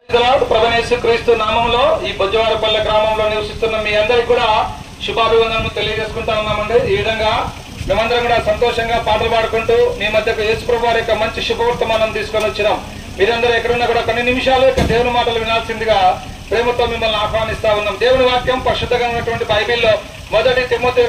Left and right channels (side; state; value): both; identical; correlation 1.00